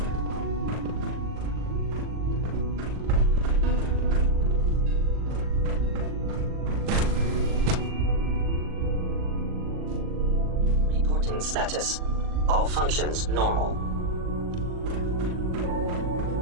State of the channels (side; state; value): left; late; 39 ms